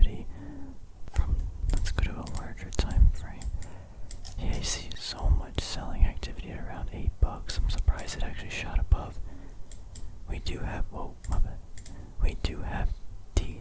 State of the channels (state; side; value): identical; both; correlation 1.00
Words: Let's go to a larger time frame. Yeah, you see so much selling activity at around $8. I'm surprised it actually shot above. We do have, whoa, my bad. We do have